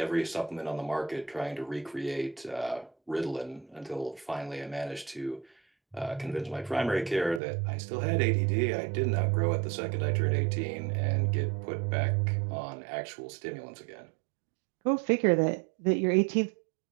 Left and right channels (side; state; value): left; drops out; at 7.4 s